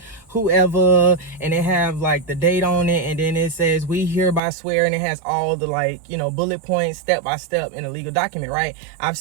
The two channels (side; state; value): left; drops out; at 4.4 s